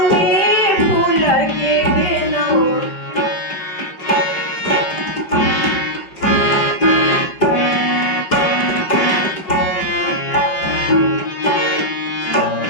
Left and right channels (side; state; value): right; late; 5.2 ms